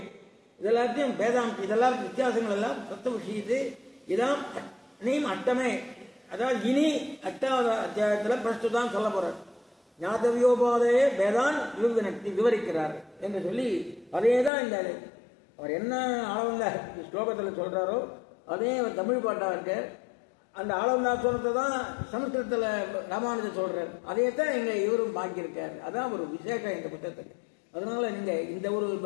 இதெல்லாத்தையும் வேதாம்ச, இதெல்லாம் வித்தியாசங்கள் எல்லாம் தத்துவ விஷயத்து. இதான் நீம் அட்டமே, அதாவது இனி 8வது அத்தியாயத்தில் பிரஸ்துதான் சொல்ல போறார். ஞாதவியோபாதேய வேதான் விவரிக்கிறார் என்று சொல்லி அதே தான் இந்த அவர் என்ன ஆளவந்த ஸ்லோகத்தில் சொல்றாரோ அதே அவர் தமிழ் பாட்டா இருக்க. அந்த ஆளவந்தா சொல்றதை தான் சமஸ்கிருதத்தில் ராமானுஜர் சொல்றார். அதே தான் இங்க இவரும் பாக்கியிருக்காரு. அதான் ஒரு விசேஷம் இந்த புத்தகத்துக்கு. அதனால நீங்க இந்த ஒரு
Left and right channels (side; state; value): right; drops out; at 14.5 s